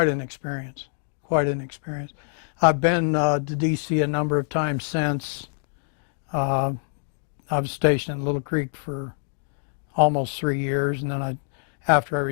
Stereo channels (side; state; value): right; silent; digital silence